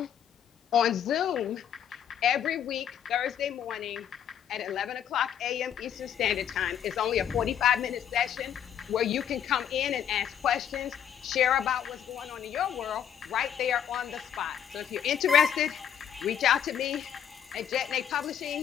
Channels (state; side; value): quieter; right; 9.2 dB